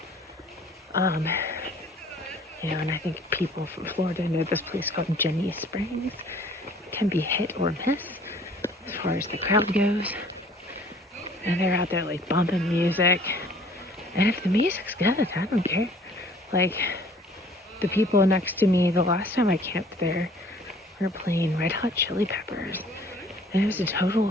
And I think people from Florida know this place called Jenny Springs. It can be hit or miss as far as the crowd goes. And they're out there, like, bumping music. And if the music's good, I don't care. Like, the people next to me, the last time I camped there, were playing Red Hot Chili Peppers. And it was a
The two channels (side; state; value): both; normal; correlation 0.54